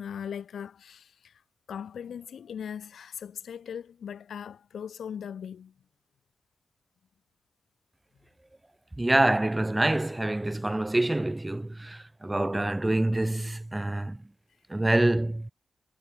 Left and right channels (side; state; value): both; normal; correlation 0.98